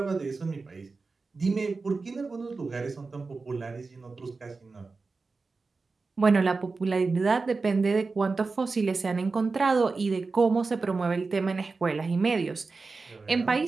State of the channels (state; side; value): quieter; left; 4.1 dB